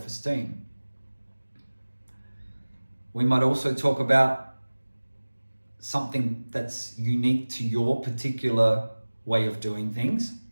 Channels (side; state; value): both; inverted; correlation -1.00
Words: We might also talk about something that's unique to your particular way of doing things,